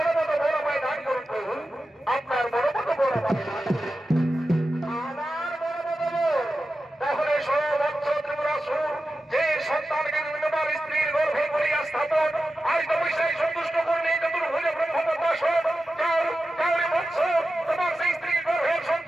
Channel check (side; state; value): both; normal; correlation 0.92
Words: মতো বড় মায় দান করুন প্রভু, আপনার বড় মতো বড় মায় দান করুন। আমার বড় মতো তাহলে সর্বোচ্চ ত্রিপুরাসুর যে সন্তানকে তোমার স্ত্রীর গর্ভে করিয়া স্থাপন আজ তপস্যায় সন্তুষ্ট করলে চতুর্ভুজ ব্রহ্মপদ্মাস কাউরে বৎস তোমার সেই স্ত্রীর গর্ভের